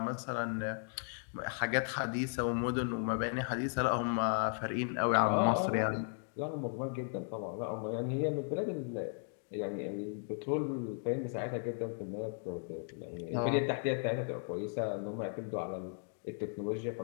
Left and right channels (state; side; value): silent; right; 54 dB below the other